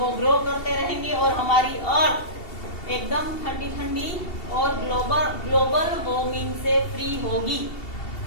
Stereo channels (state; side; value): late; right; 2.7 ms